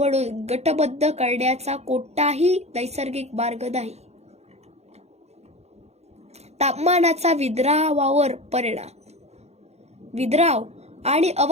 गटबद्ध करण्याचा कोणताही नैसर्गिक मार्ग नाही. तापमानाचा विद्रावावर परिणाम. विद्राव आणि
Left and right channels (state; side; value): late; left; 0.31 ms